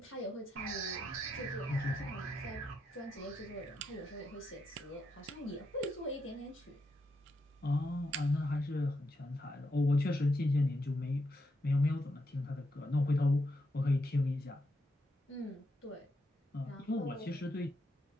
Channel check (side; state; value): both; normal; correlation 0.82